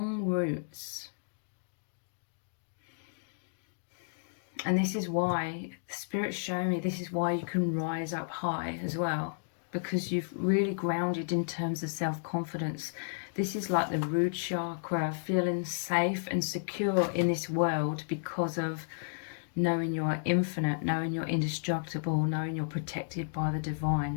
roots. And this is why the Spirit's showing me, this is why you can rise up high as well, because you've really grounded in terms of self-confidence. This is like the root chakra, feeling safe and secure in this world because of knowing you're infinite, knowing you're indestructible, knowing you're protected by the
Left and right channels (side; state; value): right; silent; digital silence